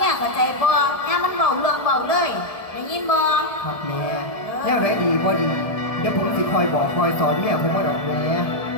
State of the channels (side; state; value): right; late; 1.7 ms